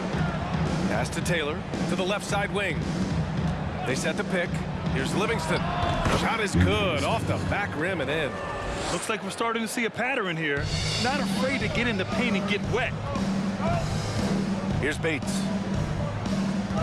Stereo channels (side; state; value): both; identical; correlation 1.00